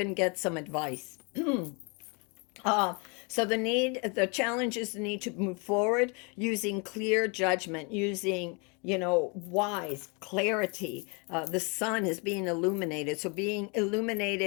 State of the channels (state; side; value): quieter; right; 32.5 dB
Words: get some advice. Uh, so the challenge is the need to move forward using clear judgment, using, wise clarity. The sun is being illuminated. So being